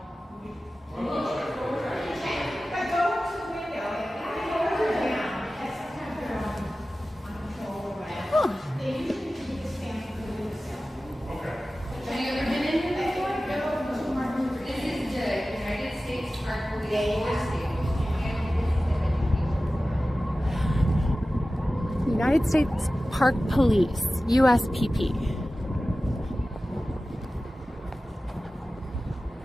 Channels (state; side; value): normal; both; correlation 0.96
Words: United States Park Police, USPP.